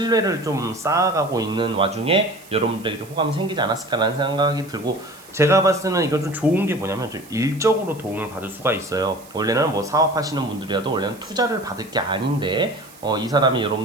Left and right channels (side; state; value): right; noise; hiss, 23 dB below the sound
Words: 좀 쌓아가고 있는 와중에 여러분들에게 좀 호감이 생기지 않았을까라는 생각이 들고, 제가 봤을 때는 이건 좀 좋은 게 뭐냐면 좀 일적으로 도움을 받을 수가 있어요. 원래는 뭐 사업하시는 분들이라도 원래는 투자를 받을 게 아닌데 이 사람이